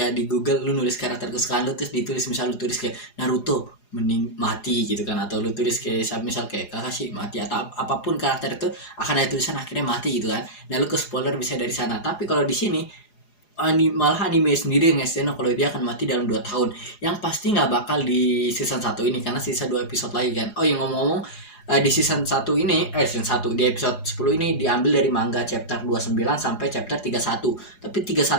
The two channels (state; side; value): late; right; 4.8 ms